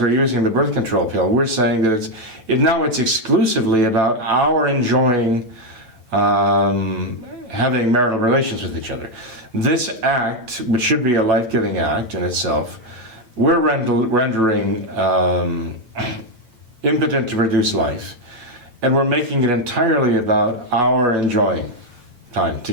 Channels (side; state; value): left; late; 9.0 ms